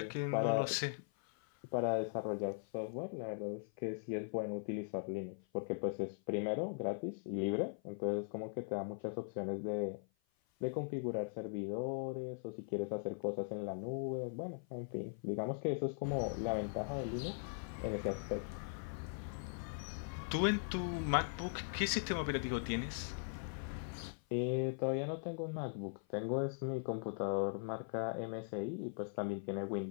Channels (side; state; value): right; silent; 51 dB below the other